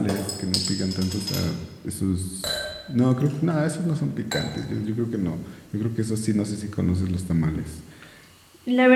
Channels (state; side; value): identical; both; correlation 1.00